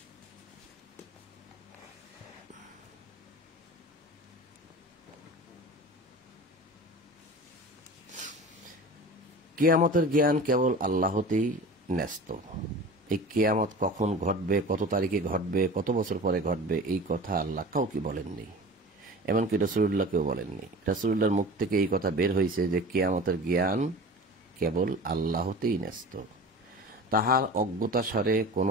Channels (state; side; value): normal; both; correlation 0.37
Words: কিয়ামতের জ্ঞান কেবল আল্লাহতেই ন্যস্ত। এই কিয়ামত কখন ঘটবে, কত তারিখে ঘটবে, কত বছর পরে ঘটবে, এই কথা আল্লাহ কাউকে বলেননি, এমনকি রাসূলুল্লাহকেও বলেননি। রাসূলুল্লাহর মুখ থেকে এই কথা বের হয়েছে যে কিয়ামতের জ্ঞান কেবল আল্লাহতেই ন্যস্ত। তাহার অজ্ঞতাসারে